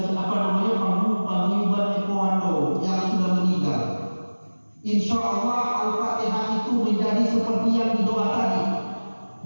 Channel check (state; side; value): inverted; both; correlation -1.00